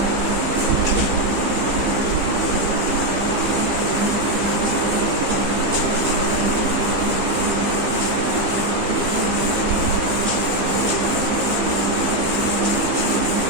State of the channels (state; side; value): late; left; 15 ms